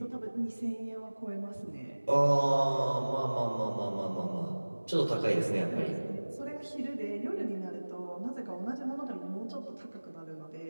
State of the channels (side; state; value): both; inverted; correlation -1.00